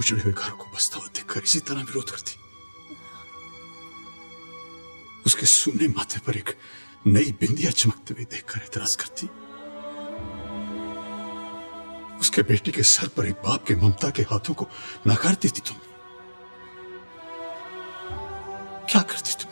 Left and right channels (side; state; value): both; inverted; correlation -1.00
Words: हुए घर को बसता हुआ देखकर इसी तरह विरोध करती? उसके सूने माथे पर एक नई बिंदिया चमकते हुए देखकर एतराज करती? उसके बेटी के सर पर एक बाप के ममता के हाथों को नकार देती तुम? क्या करती तुम